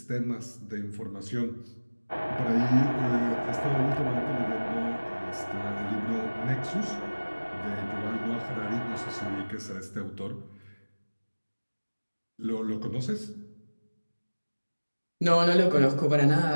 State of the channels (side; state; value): both; inverted; correlation -1.00